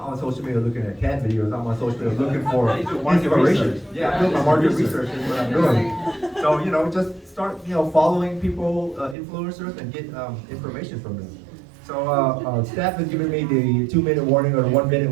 on social media looking at cat videos. I'm on social media looking for inspiration. Yeah, I'm doing my market research is what I'm doing. So just start following people, influencers, and get information from them. So staff has given me the 2-minute warning or the 1-minute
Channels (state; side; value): drops out; left; at 9.2 s